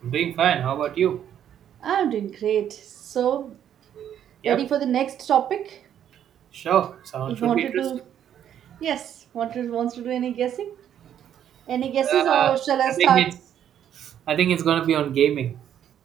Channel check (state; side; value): quieter; left; 9.9 dB